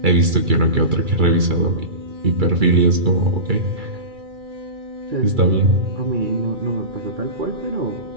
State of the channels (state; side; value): late; left; 2.3 ms